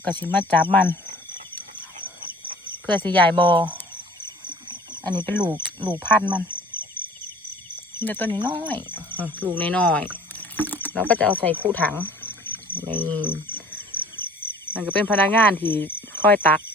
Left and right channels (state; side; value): normal; both; correlation 0.49